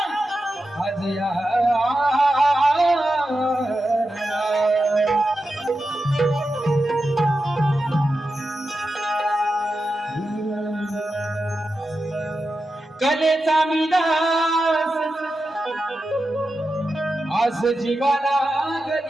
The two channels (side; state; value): both; normal; correlation 0.90